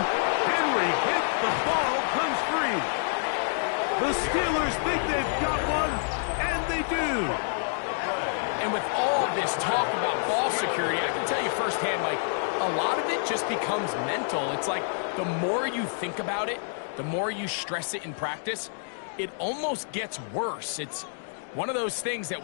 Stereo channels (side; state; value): right; silent; digital silence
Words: Henry hit, the ball comes free. The Steelers think they've got one, and they do. And with all this talk about ball security, I can tell you firsthand, Mike, a lot of it just becomes mental. It's like the more you think about it, the more you stress it in practice, it almost gets worse. It's one of those things that